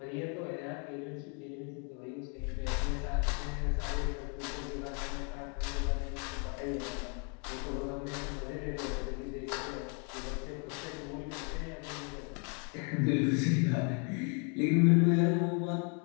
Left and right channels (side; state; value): right; quieter; 37.9 dB